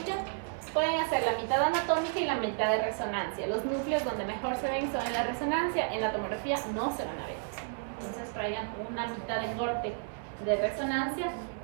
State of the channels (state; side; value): silent; left; 56 dB below the other